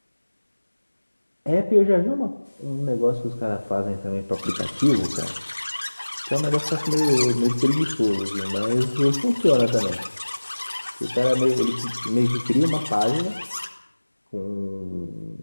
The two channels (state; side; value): inverted; both; correlation -1.00